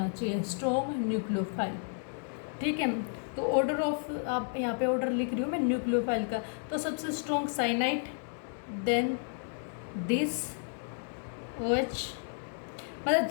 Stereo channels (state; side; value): silent; right; 56 dB below the other